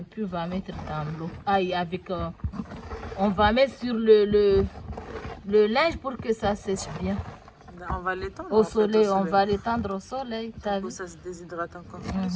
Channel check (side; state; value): both; identical; correlation 1.00